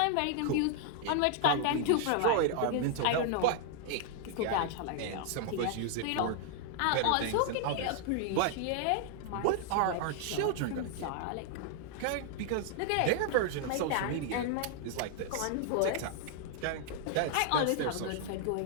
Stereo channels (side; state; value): both; different; correlation 0.00